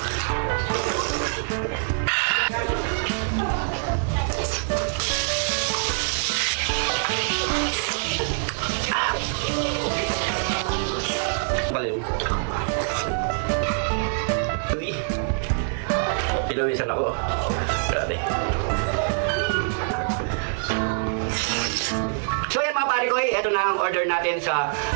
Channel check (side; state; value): left; silent; digital silence